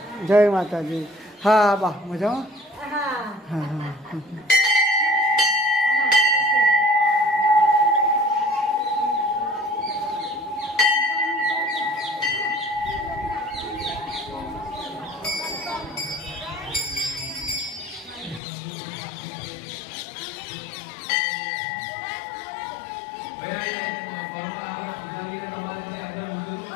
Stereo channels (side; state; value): right; drops out; at 18.4 s